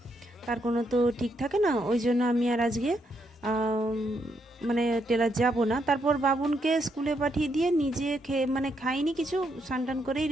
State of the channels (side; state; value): both; normal; correlation 0.77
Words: তার কোনো তো ঠিক থাকে না। ওই জন্য আমি আর আজকে মানে টেলার যাব না। তারপর বাবুনকে স্কুলে পাঠিয়ে দিয়ে নিজে মানে খাইনি কিছু, স্নান করেই